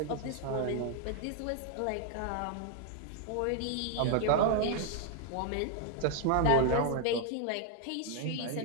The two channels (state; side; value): different; both; correlation 0.00